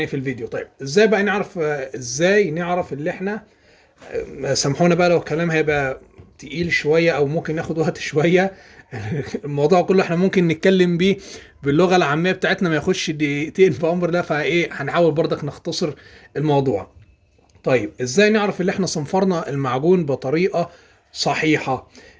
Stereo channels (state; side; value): identical; both; correlation 1.00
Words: في الفيديو. طيب ازاي بقى نعرف، اللي احنا، سامحونا بقى لو الكلام هيبقى تقيل شوية او ممكن ناخد وقت شوية. الموضوع كله احنا ممكن نتكلم بيه باللغة العامية بتاعتنا، ما ياخدش دقيقتين في امر ده، هنحاول برضك نختصر الموضوع. طيب ازاي نعرف اللي احنا صنفرنا المعجون بطريقة صحيحة؟